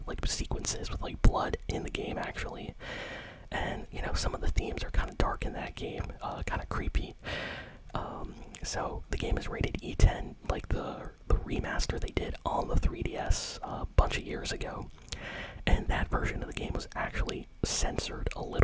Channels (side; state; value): both; identical; correlation 1.00